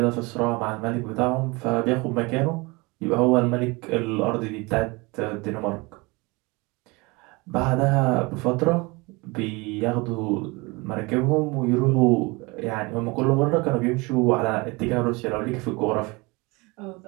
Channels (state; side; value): quieter; left; 25.5 dB